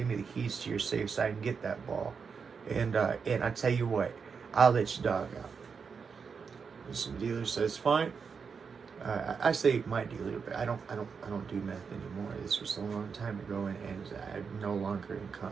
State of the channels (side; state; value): left; quieter; 5.8 dB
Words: me the keys to your safe so I can get that ball. And I tell you what, I'll let your dog out. And some dealer says, "Fine." I say my dealer, but I don't do meth anymore. This was a long time ago, and I'm no longer in